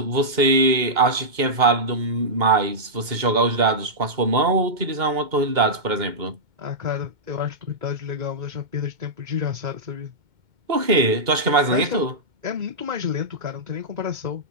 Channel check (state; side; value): late; left; 2.2 ms